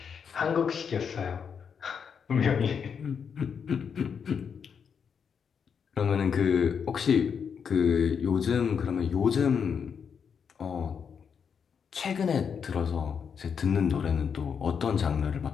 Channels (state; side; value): quieter; right; 6.8 dB